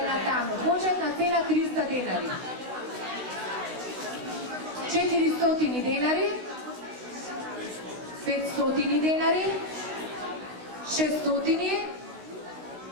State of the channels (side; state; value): left; late; 16 ms